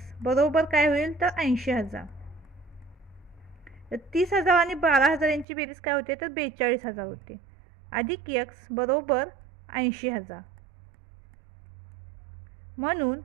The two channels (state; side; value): drops out; left; at 5.5 s